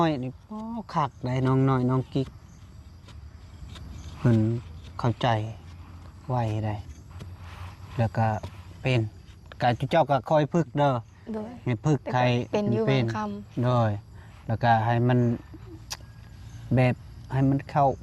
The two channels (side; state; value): both; identical; correlation 1.00